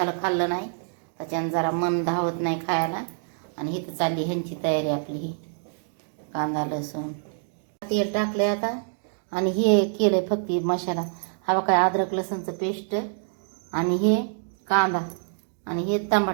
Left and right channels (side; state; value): left; silent; digital silence